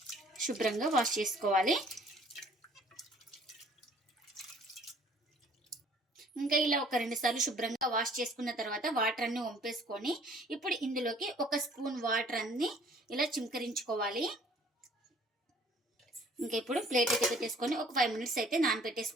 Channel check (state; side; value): normal; both; correlation 0.56